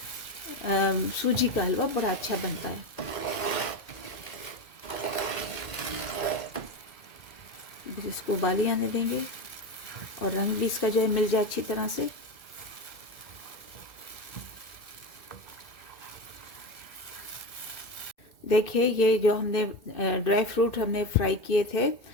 सूजी का हलवा बड़ा अच्छा बनता है। बस इसको उबाली आने देंगे और रंग भी इसका जो है मिल जाए अच्छी तरह से। देखिए, ये जो हमने ड्राई फ्रूट हमने फ्राई किए थे,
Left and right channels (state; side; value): late; right; 2.1 ms